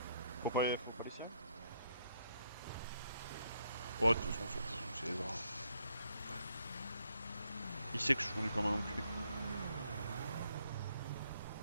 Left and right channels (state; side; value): inverted; both; correlation -0.73